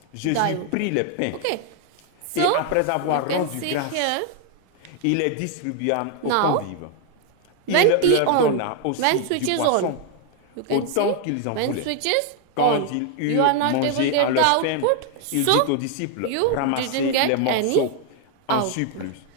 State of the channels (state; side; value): different; both; correlation 0.00